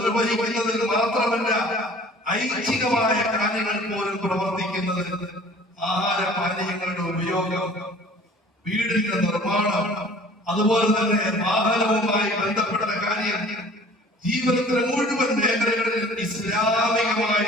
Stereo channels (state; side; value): normal; both; correlation 0.49